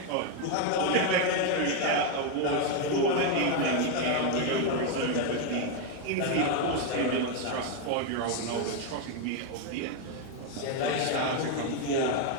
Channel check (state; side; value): different; both; correlation 0.01